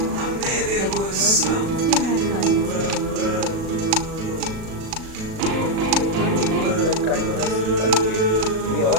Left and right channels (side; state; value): left; late; 37 ms